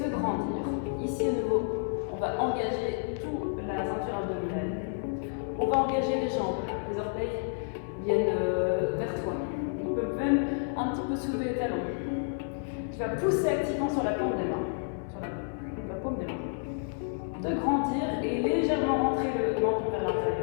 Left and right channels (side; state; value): right; silent; 58 dB below the other